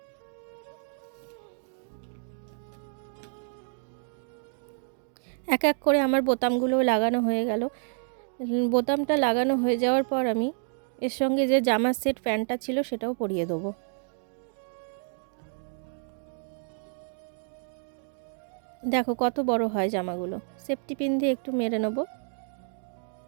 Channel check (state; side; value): silent; left; 58 dB below the other